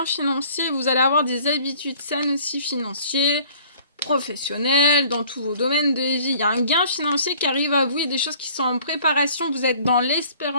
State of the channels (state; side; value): inverted; both; correlation -0.53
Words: financier. Vous allez avoir des habitudes saines aussi financières, professionnelles, dans tous vos domaines de vie. Il y a un gain financier qui arrive à vous. Il y a des choses qui sont en préparation. Vous êtes dans